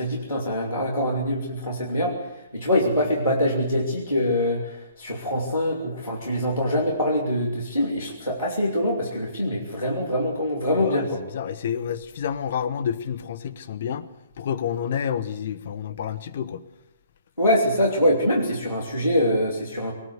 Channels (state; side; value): inverted; both; correlation -0.60